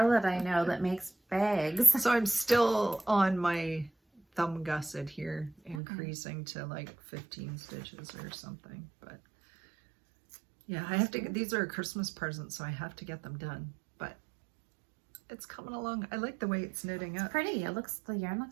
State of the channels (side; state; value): left; drops out; at 5.8 s